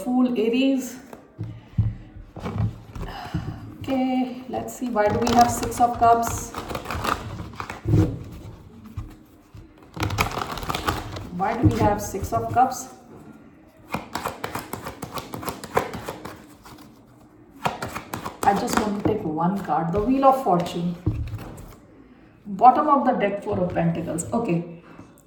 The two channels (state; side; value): identical; both; correlation 1.00